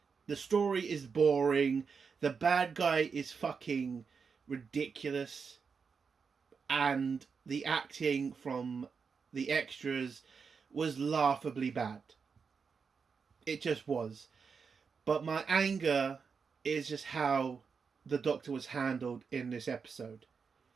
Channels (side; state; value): left; quieter; 5.6 dB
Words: The story is boring. The bad guy is fucking ridiculous. And the acting from the extras was laughably bad. It just was. But my anger is just how the Doctor was handled in this episode.